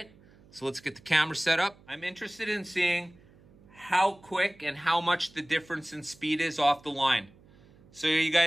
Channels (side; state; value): right; noise; hum, 27 dB below the sound